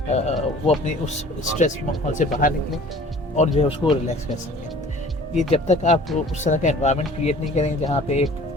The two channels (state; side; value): normal; both; correlation 0.48